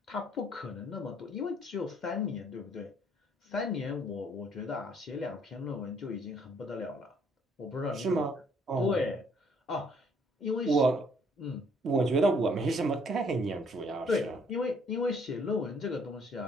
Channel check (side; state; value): both; normal; correlation 0.64